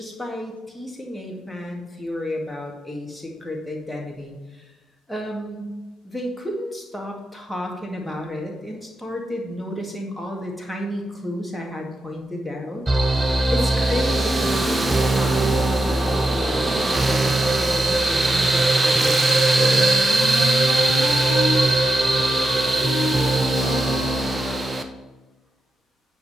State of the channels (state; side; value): normal; both; correlation 0.87